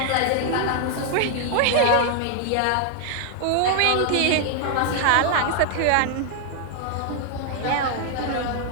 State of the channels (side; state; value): both; different; correlation 0.00